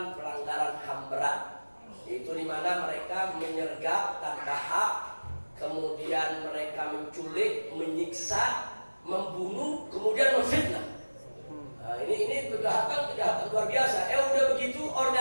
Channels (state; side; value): inverted; both; correlation -1.00